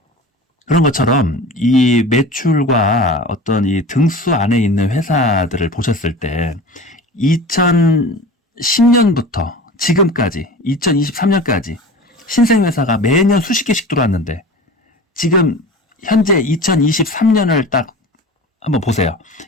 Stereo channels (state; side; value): normal; both; correlation 0.36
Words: 그런 것처럼 이 매출과 어떤 이 등수 안에 있는 회사들을 보셨을 때 2010년부터 지금까지 2023년까지 신생회사가 매년 수십 개씩 들어왔는데 지금 현재 2023년을 딱 한번 보세요.